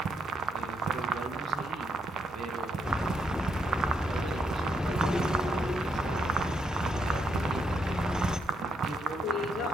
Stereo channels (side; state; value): both; normal; correlation 0.77